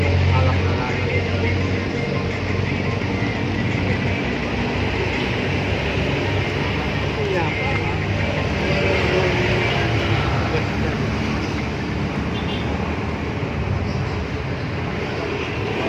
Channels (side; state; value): both; identical; correlation 1.00